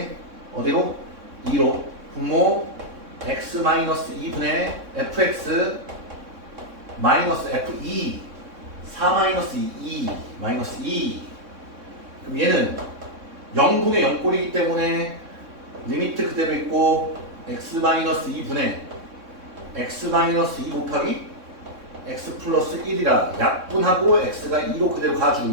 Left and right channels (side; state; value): left; late; 3.6 ms